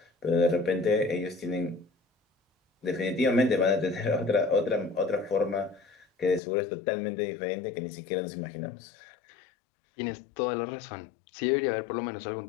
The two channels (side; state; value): right; drops out; at 6.4 s